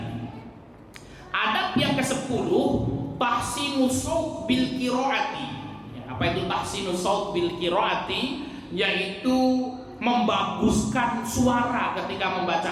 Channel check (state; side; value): identical; both; correlation 1.00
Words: Adab yang ke-10, tahsinus shaut bil qiraati. Apa itu tahsinus shaut bil qiraati? Yaitu membaguskan suara ketika